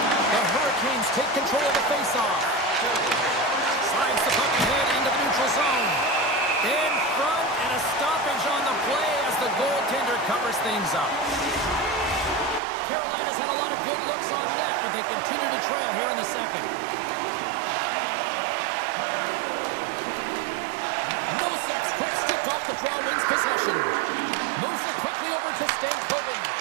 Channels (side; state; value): left; drops out; at 12.6 s